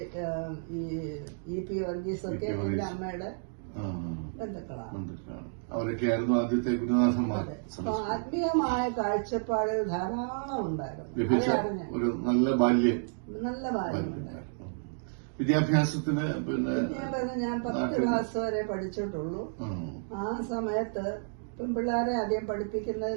EP വർഗീസ് ഒക്കെ എന്റെ അമ്മയുടെ ബന്ധുക്കളാണ്. അവരൊക്കെയായിരുന്നു ആദ്യത്തെ ഗുരുനാഥന്മാർ. ആത്മീയമായ കാഴ്ചപ്പാടുകൾ ധാരാളം ഉണ്ടായിരുന്നു. ഒരു നല്ല ബാല്യം ഉണ്ടായിരുന്നു. വിദ്യാഭ്യാസത്തിന് ഞാൻ 10 ക്ലാസ് വരെ പഠിച്ചിട്ടുള്ളൂ. ആ സമയത്ത് പെൺപിള്ളേരെ ആദ്യം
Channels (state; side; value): silent; left; digital silence